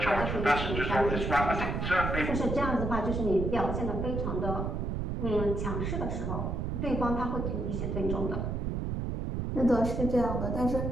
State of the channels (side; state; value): right; noise; rumble, 2 dB below the sound